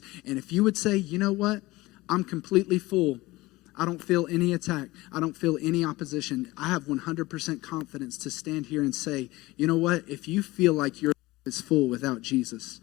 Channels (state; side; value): quieter; right; 19.9 dB